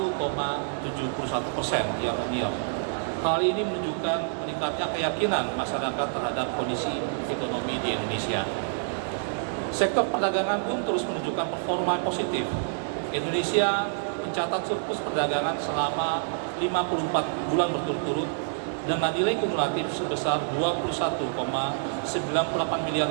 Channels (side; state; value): left; silent; digital silence